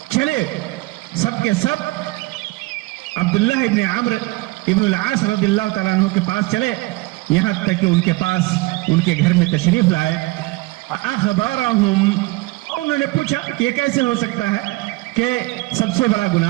چلے سب کے سب عبداللہ ابن عمرو ابن العاص رضی اللہ تعالیٰ عنہ کے پاس چلے، یہاں تک کہ ان کے پاس ان کے گھر میں تشریف لائے. اخبرہم، انہوں نے پوچھا کہ یہ کیسے ہو سکتا ہے کہ سب سے بڑا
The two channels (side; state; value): left; quieter; 21.9 dB